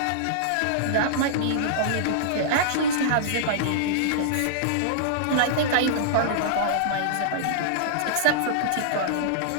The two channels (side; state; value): both; different; correlation -0.02